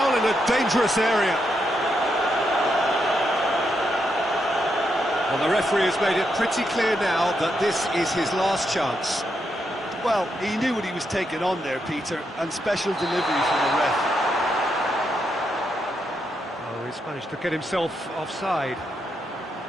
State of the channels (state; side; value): normal; both; correlation 0.81